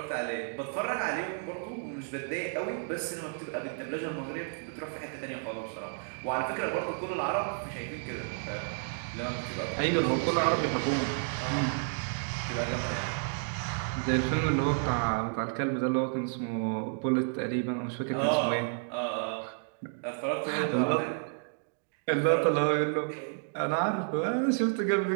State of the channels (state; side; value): silent; left; digital silence